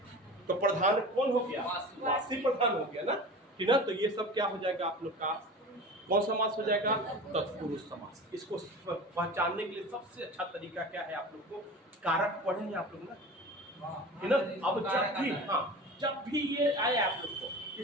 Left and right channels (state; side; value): normal; both; correlation 0.35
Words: तो प्रधान कौन हो गया? वासी प्रधान हो गया ना, कि ना। तो ये सब क्या हो जाएगा आप लोग का? कौन समास हो जाएगा? तत्पुरुष समास। इसको पहचानने के लिए सबसे अच्छा तरीका क्या है? आप लोग को कारक पढ़ेंगे आप लोग ना, है ना। अब जब भी ये आए आप लोग को